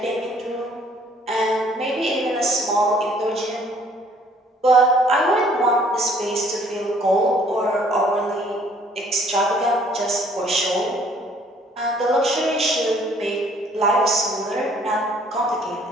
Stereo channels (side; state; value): both; normal; correlation 0.60